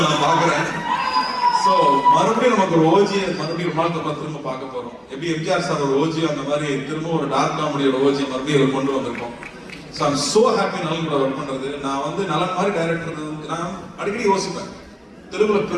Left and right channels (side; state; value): both; identical; correlation 1.00